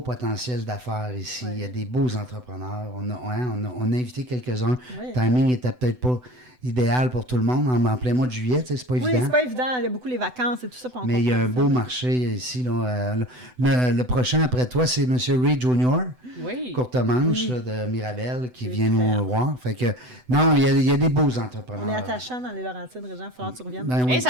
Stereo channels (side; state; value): left; late; 8.0 ms